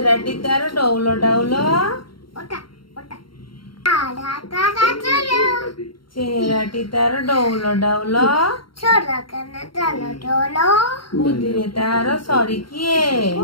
तार डौल डाउल चेहराटी तार डौल डाउल बुद्धिरे तार सरी किए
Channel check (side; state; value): right; late; 0.73 ms